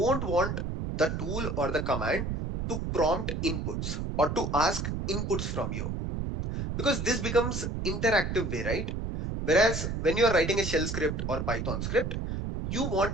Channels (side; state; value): right; noise; rumble, 3 dB below the sound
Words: want the tool or the command to prompt inputs or to ask inputs from you, because this becomes interactive right? Whereas when you are writing a shell script or Python script, you